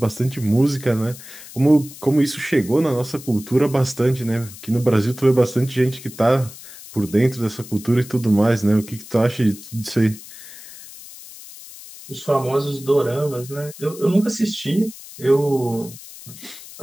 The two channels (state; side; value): noise; left; hiss, 16 dB below the sound